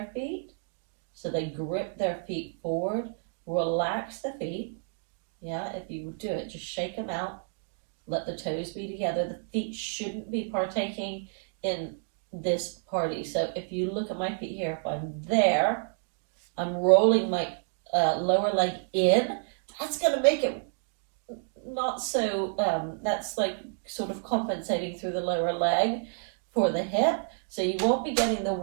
feet. So they grip their feet forward, relax the feet. Yeah, if you do it, just shake them out. Let the toes be together. The feet shouldn't be partaking in this party. So if you look at my feet here, if I'm there, I'm rolling my lower leg in. That's going to make it not so, that's like sort of compensating through the lower leg for the hip. So you won't be getting the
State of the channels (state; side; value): silent; left; digital silence